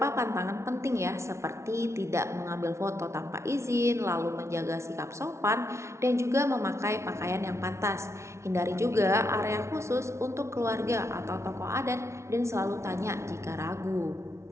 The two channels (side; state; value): left; late; 0.13 ms